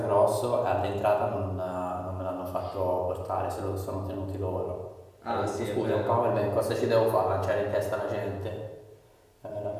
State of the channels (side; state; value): both; identical; correlation 1.00